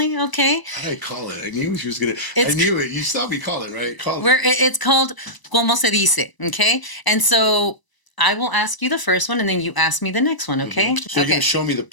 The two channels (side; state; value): right; late; 1.0 ms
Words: okay? How did I call it? I knew she was gonna. It's- I knew it. You saw me call it, right? Call Where it. it's called Como se dice, okay? And so I will ask you the first one, and then you ask me the next one, okay? So you're Okay. gonna show me the